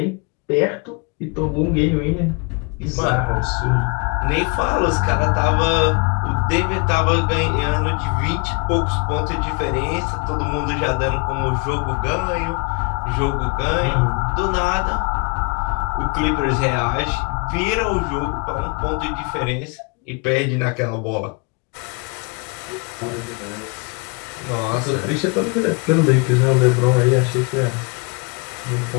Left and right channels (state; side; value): quieter; right; 31.7 dB